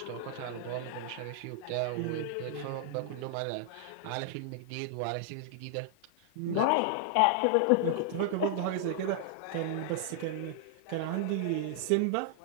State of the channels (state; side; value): different; both; correlation -0.01